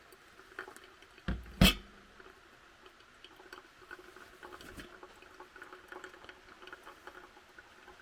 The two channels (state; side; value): identical; both; correlation 1.00